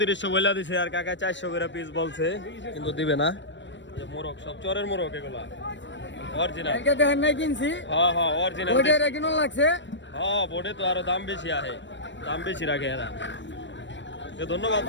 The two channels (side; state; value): right; late; 0.53 ms